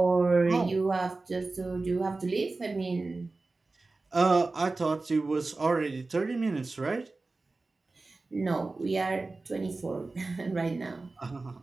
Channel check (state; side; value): quieter; left; 3.5 dB